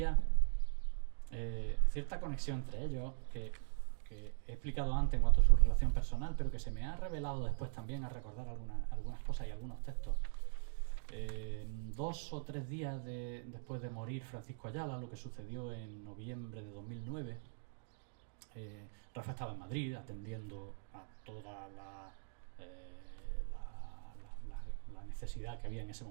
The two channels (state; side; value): silent; left; digital silence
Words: cierta conexión entre ellos que he explicado antes en cuanto a su relación personal, pero que se me ha revelado después también a recordar algunas cosas y algunos textos. 2 o 3 días después de morir Francisco Ayala, lo que sucedió en noviembre de 2009, Rafa estaba en Madrid atendiendo a toda la necesidad que había en ese